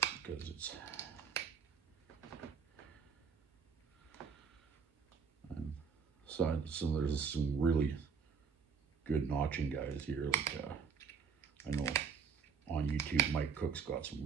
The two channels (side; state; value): left; quieter; 6.0 dB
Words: because it's so there's some really good notching guys here. Like I know on YouTube, Mike Cook's got some